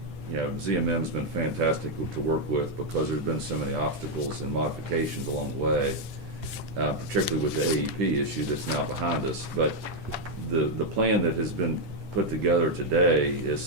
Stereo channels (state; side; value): late; left; 10 ms